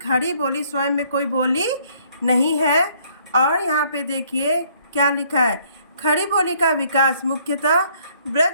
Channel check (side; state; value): both; inverted; correlation -0.64